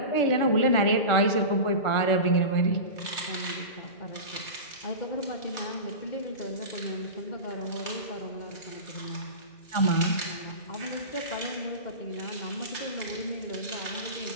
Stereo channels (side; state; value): right; late; 1.4 ms